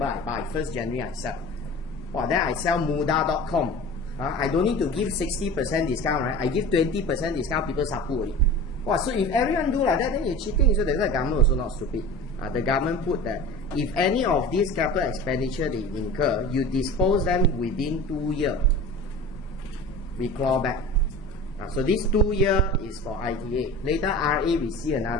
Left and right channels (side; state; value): both; normal; correlation 0.36